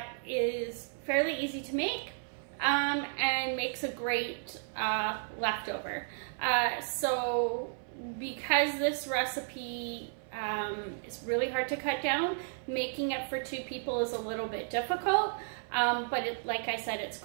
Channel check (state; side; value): silent; left; 56 dB below the other